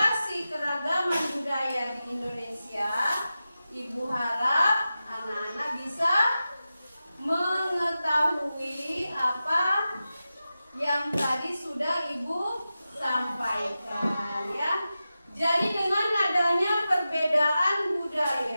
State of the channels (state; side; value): inverted; both; correlation -0.93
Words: keragaman budaya di Indonesia, Ibu harap anak-anak bisa mengetahui apa yang tadi sudah Ibu sampaikan, ya. Jadi dengan adanya perbedaan